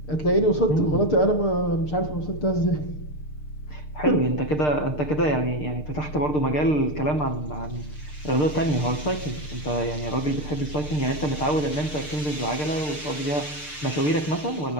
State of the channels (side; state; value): right; late; 6.6 ms